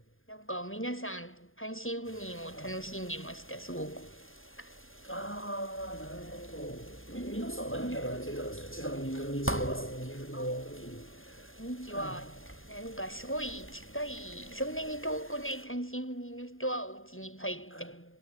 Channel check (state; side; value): late; right; 0.59 ms